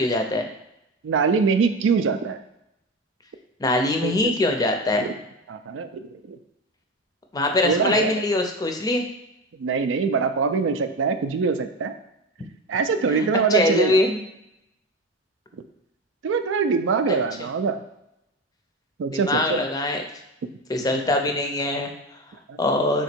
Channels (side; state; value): both; normal; correlation 0.22